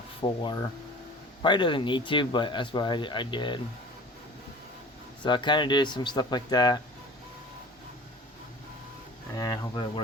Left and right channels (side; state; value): both; normal; correlation 0.41